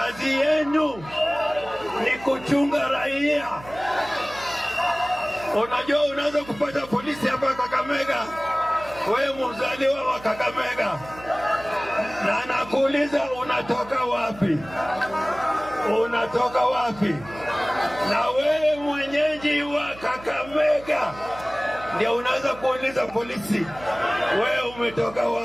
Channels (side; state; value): right; noise; hum, 18 dB below the sound